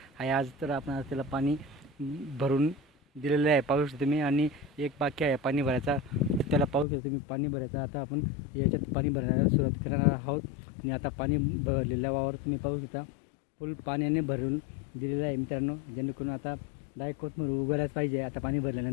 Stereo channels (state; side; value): drops out; right; at 6.9 s